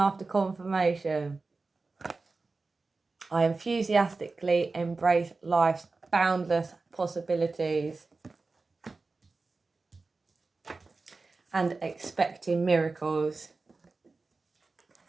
confirmation. I enthusiastically embrace life's boundless possibilities. And expecting miracles.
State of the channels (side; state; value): left; quieter; 3.8 dB